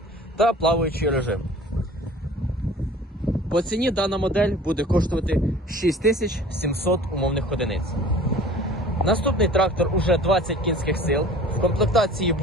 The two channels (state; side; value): normal; both; correlation 0.45